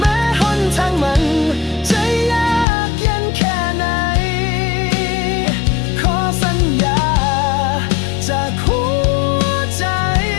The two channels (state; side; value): drops out; right; at 2.7 s